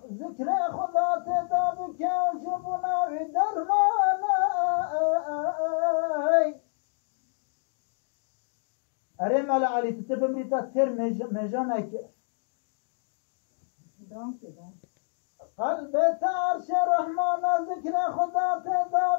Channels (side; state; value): right; silent; digital silence